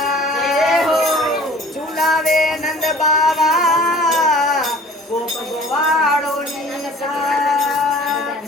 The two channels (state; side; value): normal; both; correlation 0.47